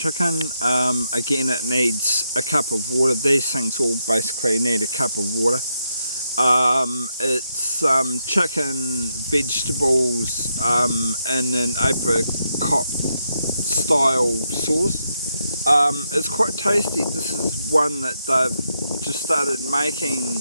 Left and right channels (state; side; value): inverted; both; correlation -0.82